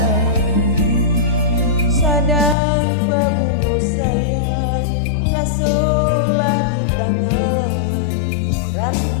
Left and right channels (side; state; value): right; drops out; at 2.6 s